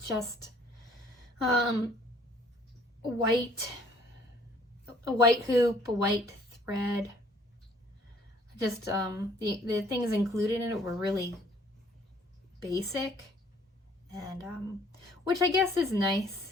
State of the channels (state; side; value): normal; both; correlation 0.59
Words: a white hoop, a white thread. Just the things included in it were really basic, and which I guess is nice